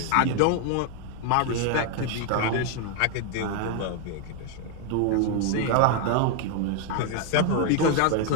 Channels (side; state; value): both; different; correlation 0.00